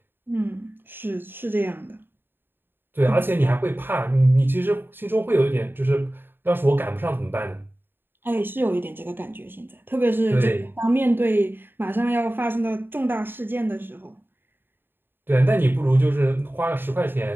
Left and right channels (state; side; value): late; left; 0.099 ms